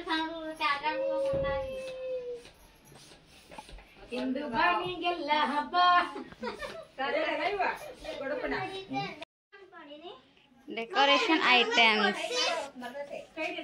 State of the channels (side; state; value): both; identical; correlation 1.00